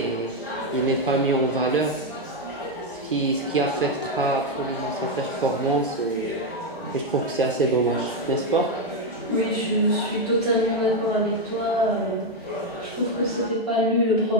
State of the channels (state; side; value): normal; both; correlation 0.05